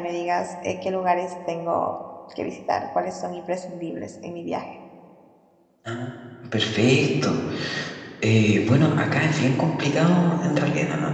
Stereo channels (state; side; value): identical; both; correlation 1.00